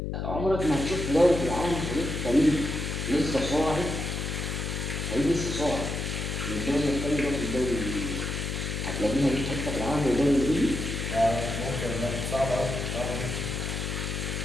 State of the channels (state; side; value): noise; left; hum, 3 dB below the sound